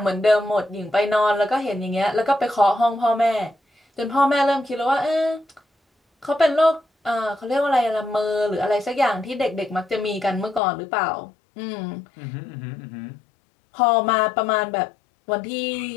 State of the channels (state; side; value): drops out; right; at 10.6 s